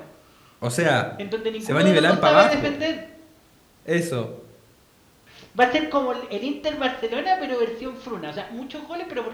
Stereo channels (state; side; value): identical; both; correlation 1.00